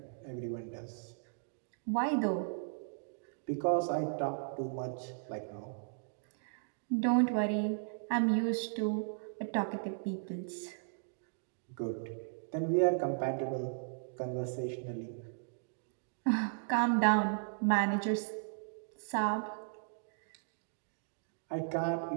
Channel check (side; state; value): left; silent; digital silence